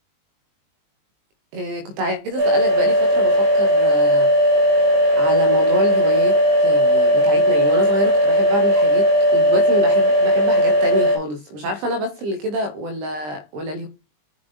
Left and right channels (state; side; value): late; left; 20 ms